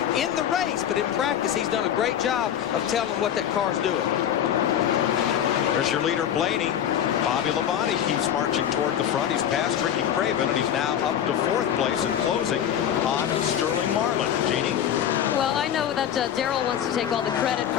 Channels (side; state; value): right; quieter; 9.8 dB